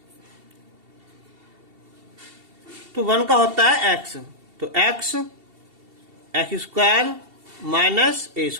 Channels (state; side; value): late; left; 2.7 ms